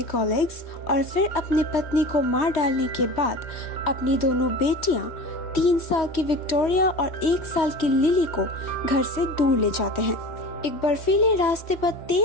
कॉलेग्स और फिर अपनी पत्नी को मार डालने के बाद अपनी दोनों बेटियां 3 साल की विक्टोरिया और 1 साल की लिली को घर से दूर ले जाते हैं। एक बर्फीले रास्ते पर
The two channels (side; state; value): right; late; 3.1 ms